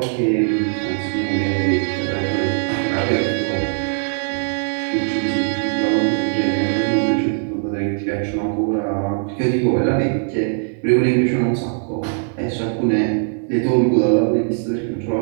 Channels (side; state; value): left; silent; 56 dB below the other